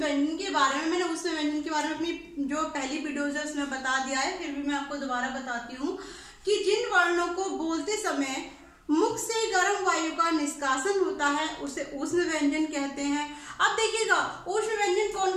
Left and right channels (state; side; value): identical; both; correlation 1.00